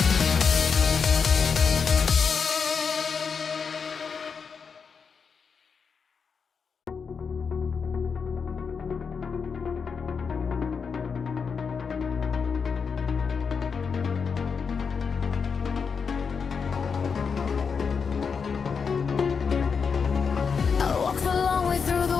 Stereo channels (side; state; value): right; quieter; 5.8 dB